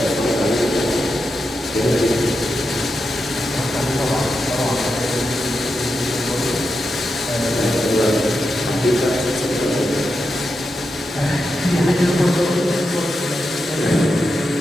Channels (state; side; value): normal; both; correlation 0.87